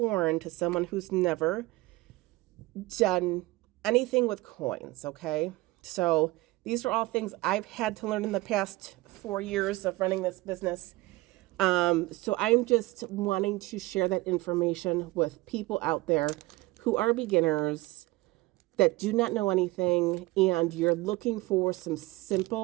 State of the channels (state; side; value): quieter; left; 20.4 dB